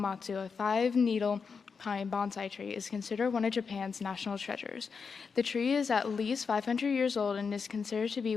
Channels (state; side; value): quieter; right; 5.5 dB